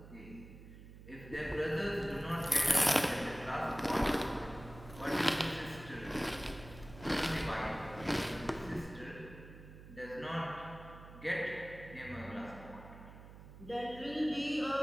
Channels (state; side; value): noise; right; hum, 16 dB below the sound